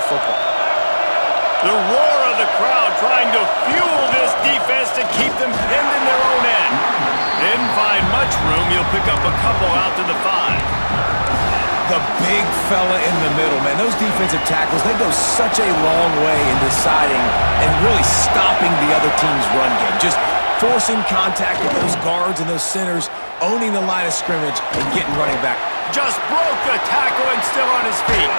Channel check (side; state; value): both; inverted; correlation -1.00